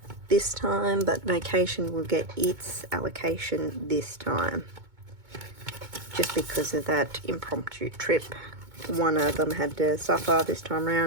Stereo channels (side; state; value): left; late; 2.2 ms